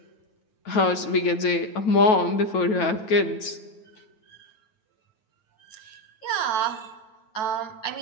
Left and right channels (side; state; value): right; late; 9.2 ms